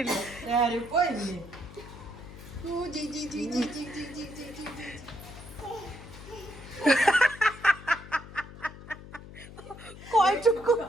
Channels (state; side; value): noise; left; hum, 15 dB below the sound